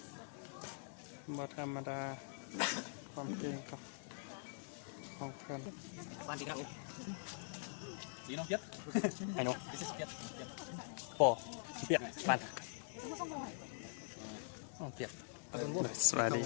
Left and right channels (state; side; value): silent; right; digital silence